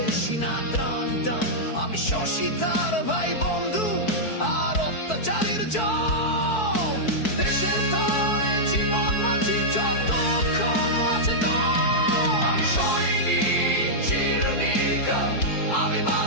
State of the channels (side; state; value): right; late; 4.6 ms